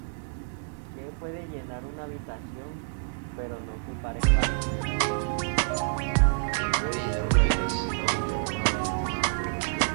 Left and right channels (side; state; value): left; silent; 59 dB below the other